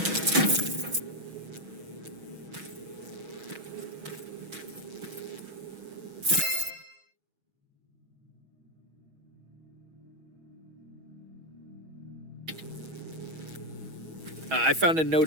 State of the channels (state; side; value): late; left; 6.2 ms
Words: I found a note